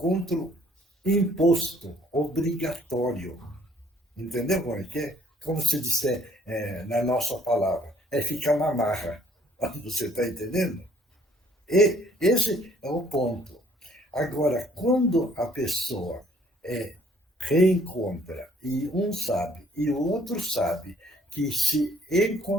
imposto, obrigatório. Entendeu como é que é? Como se disser na nossa palavra, é ficar na marra. Você está entendendo? E esse é o ponto. Agora, quando a pessoa reencontra, e um sabe, e o outro sabe, que se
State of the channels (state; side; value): normal; both; correlation 0.61